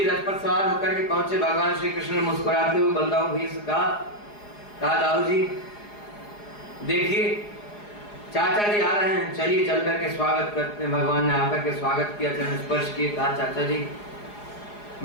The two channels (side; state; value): right; late; 4.8 ms